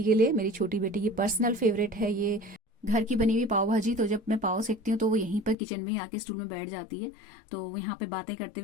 के लिए। मेरी छोटी बेटी की पर्सनल फेवरेट है ये घर की बनी हुई पाव भाजी। तो जब मैं पाव सेकती हूँ तो वो यहीं पर किचन में ही आके स्टूल में बैठ जाती है, तो वो यहाँ पे बातें करते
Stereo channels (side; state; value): right; drops out; at 5.6 s